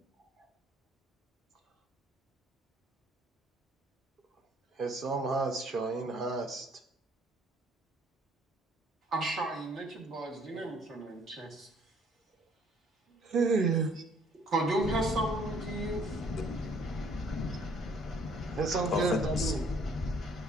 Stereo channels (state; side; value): normal; both; correlation 0.61